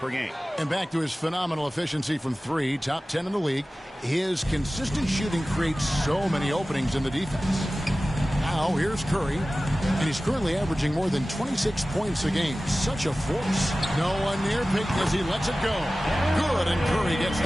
game. And back to his phenomenal efficiency from three, top 10 in the league. His consistent shooting creates so many openings in the defense. Now, here's Curry. And he's currently averaging more than 26 points a game. Such a force. No one near Payton as he lets it go. Good, and Curry gets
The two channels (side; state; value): both; normal; correlation 0.96